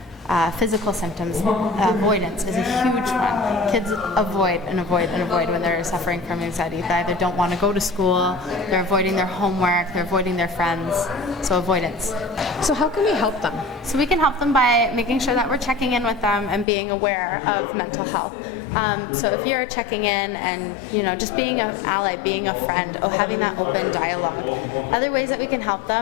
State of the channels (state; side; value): drops out; right; at 16.7 s